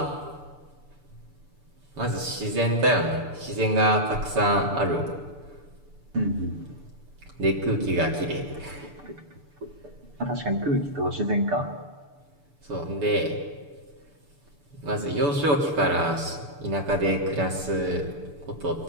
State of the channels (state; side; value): late; left; 6.9 ms